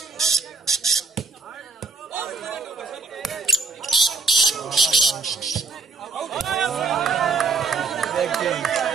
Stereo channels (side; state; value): left; quieter; 4.4 dB